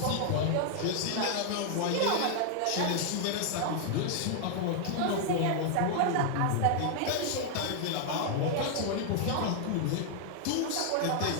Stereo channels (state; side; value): different; both; correlation 0.00